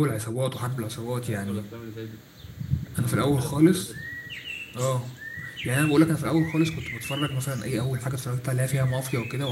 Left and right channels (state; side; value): identical; both; correlation 1.00